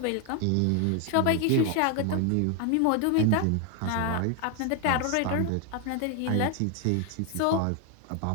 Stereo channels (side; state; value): both; different; correlation 0.01